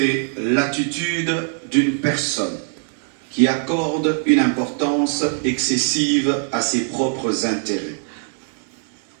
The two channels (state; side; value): silent; left; 60 dB below the other